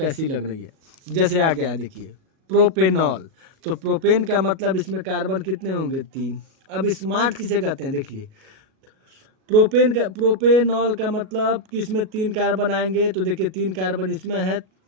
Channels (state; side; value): late; left; 37 ms